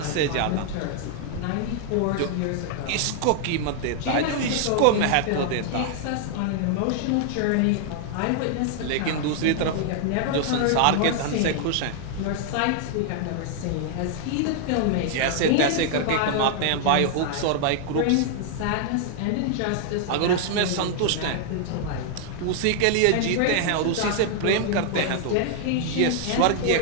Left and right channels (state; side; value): different; both; correlation 0.00